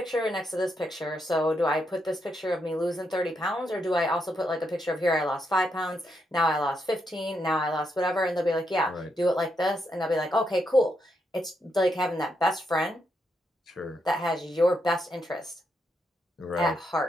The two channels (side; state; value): both; normal; correlation 0.80